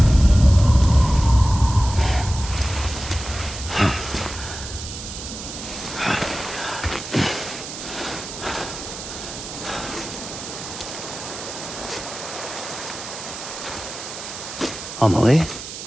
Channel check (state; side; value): noise; right; hiss, 10 dB below the sound